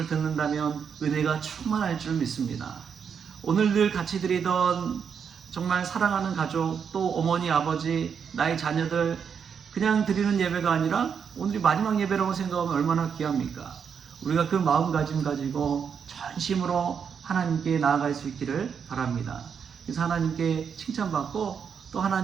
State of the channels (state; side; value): quieter; left; 6.9 dB